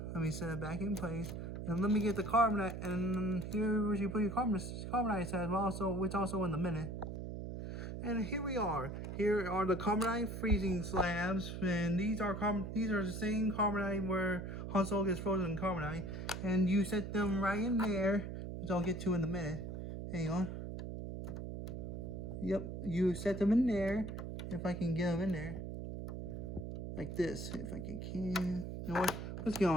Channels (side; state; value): right; noise; hum, 6 dB below the sound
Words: me set it back in place. And let me get the carbonite, and here where you put your carbonite slabs, which also in a minute. And here we are. Here are the carbonite freezing slabs, and these are the same carbonite where Han Solo gets frozen in carbonite, and you set them right in there, which I'll get to in a minute. Hang on. Yep, you set them in there. If I can get them in there, like this. If I can. You know what? Let's get